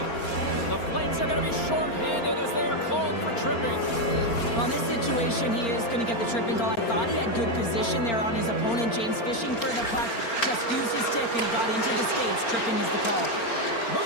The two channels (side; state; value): right; late; 4.4 ms